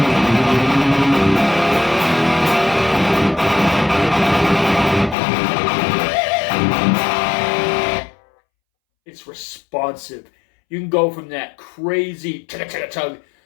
It's responsive. You can go from that crazy chugga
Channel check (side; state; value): right; drops out; at 5.2 s